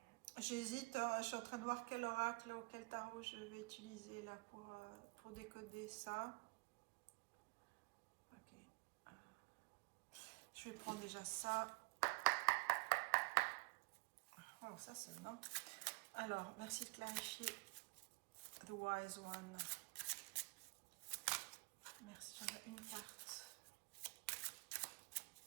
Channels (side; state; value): left; quieter; 30.5 dB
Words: J'hésite, je suis en train de voir quel oracle ou quel tarot je vais utiliser là pour décoder ça. Ok. Je vais prendre déjà ça. Oh, ça c'est bon. Alors, merci de clarifier. The Wise One. Merci, j'en ai une carte.